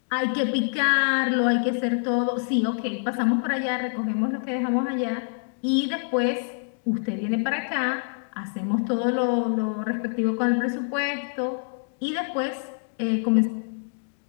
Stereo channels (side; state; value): right; silent; digital silence